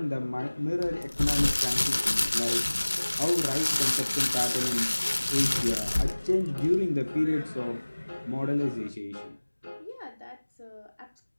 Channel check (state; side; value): inverted; both; correlation -1.00